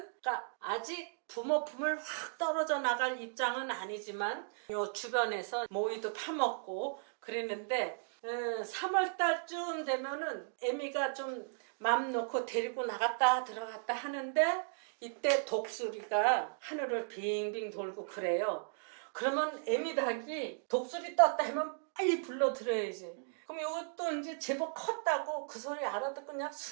그러니까 아직 부모 품을 확 떨어져 나갈 입장은 아니지만 요 주변에서 모이도 파먹고 그랬는데 3월 달쯤 되면은 애미가 좀 맘 놓고 데리고 나갔다 들어갔다 하는데 이때 독수리가 하늘을 빙빙 돌고 그래요. 그러면 애미닭이 독수리 떴다 하면 빨리 불러들어야지. 그럼 이것도 이제 제법 컸다고 그 소리 알아듣고 그냥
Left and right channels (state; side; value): silent; left; digital silence